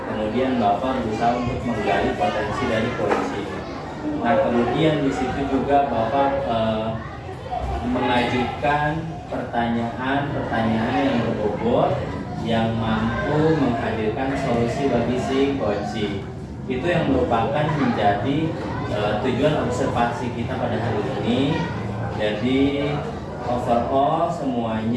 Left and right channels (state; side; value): identical; both; correlation 1.00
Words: Kemudian Bapak berusaha untuk menggali potensi dari coaching. Nah, kemudian di situ juga Bapak mengajukan pertanyaan-pertanyaan yang berbobot yang mampu menghadirkan solusi bagi si coaching. Itu yang merupakan menjadi tujuan observasi kita pada hari ini. Jadi overall